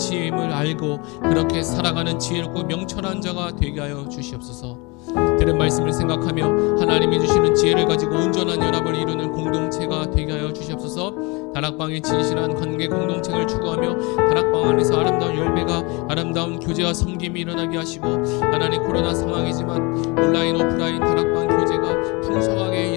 알고 그렇게 살아가는 지혜롭고 명철한 자가 되게 하여 주시옵소서. 들은 말씀을 생각하며 하나님이 주시는 지혜를 가지고 온전한 연합을 이루는 공동체가 되게 하여 주시옵소서. 다락방의 진실한 관계 공동체를 추구하며 다락방 안에서 아름다운 열매가 아름다운 교제와 섬김이 일어나게 하시고 하나님 코로나 상황이지만 온라인 오프라인 다락방 교제가 풍성하게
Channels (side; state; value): right; quieter; 27.3 dB